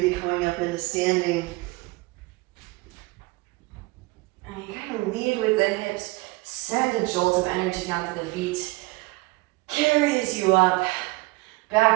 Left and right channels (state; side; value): quieter; left; 23.3 dB